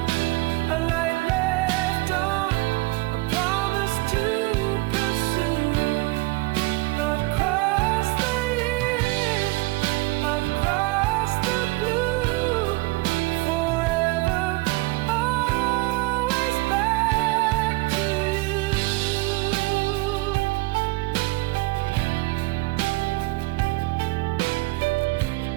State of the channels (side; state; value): left; quieter; 22.7 dB